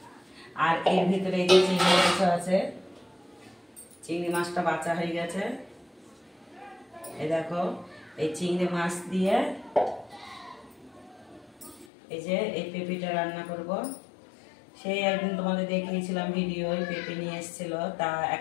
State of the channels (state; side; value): drops out; right; at 11.9 s